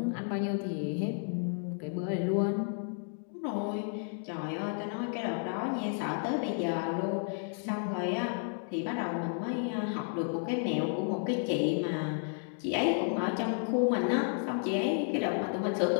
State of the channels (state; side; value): silent; right; 56 dB below the other